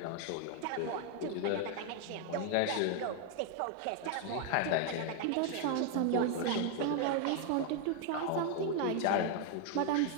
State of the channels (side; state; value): both; different; correlation 0.00